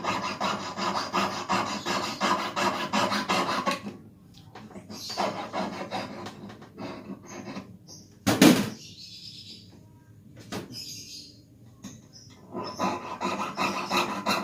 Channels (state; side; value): identical; both; correlation 1.00